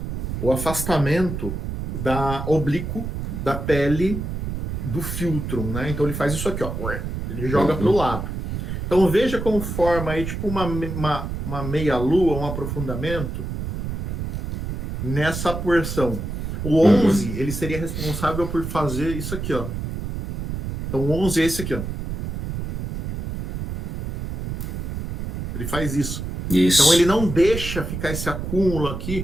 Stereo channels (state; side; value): noise; right; rumble, 5 dB below the sound